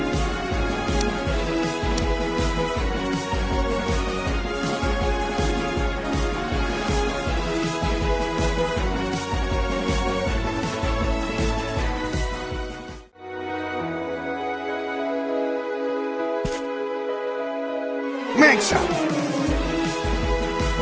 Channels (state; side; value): identical; both; correlation 1.00